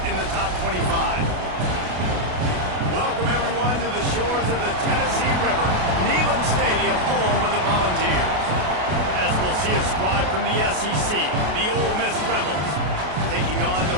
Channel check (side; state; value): left; late; 33 ms